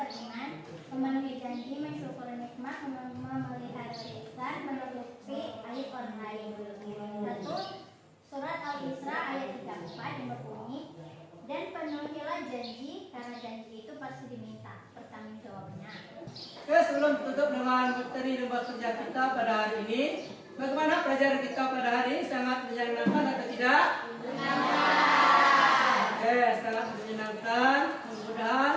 memenuhi janji, mensyukuri nikmat, memelihara lisan, menutupi aib orang lain. 1. Surat Al-Isra ayat 34 yang berbunyi, dan penuhilah janji, karena janji itu pasti diminta pertanggungjawabnya. Oke, sebelum tutup dengan materi lembar kerja kita pada hari ini, bagaimana pelajaran kita pada hari ini? Sangat menyenangkan atau tidak? Oke, sangat menyenangkan. Mudah-mudahan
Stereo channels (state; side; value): identical; both; correlation 1.00